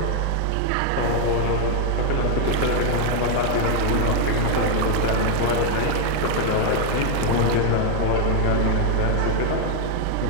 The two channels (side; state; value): both; different; correlation 0.00